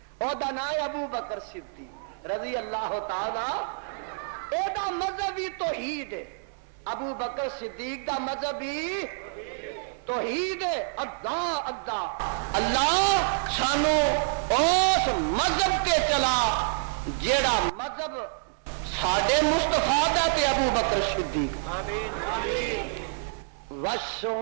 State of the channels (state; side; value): silent; left; digital silence